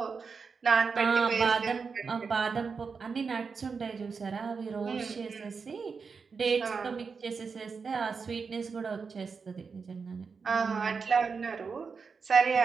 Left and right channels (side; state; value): left; quieter; 5.3 dB